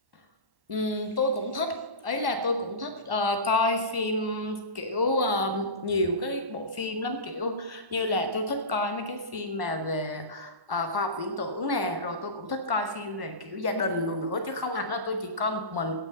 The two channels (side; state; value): left; late; 1.1 ms